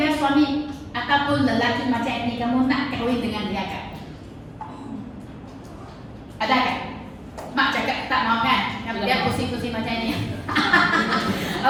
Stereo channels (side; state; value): both; identical; correlation 1.00